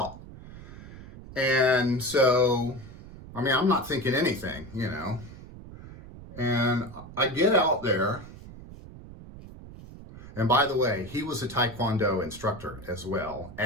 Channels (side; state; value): right; noise; rumble, 16 dB below the sound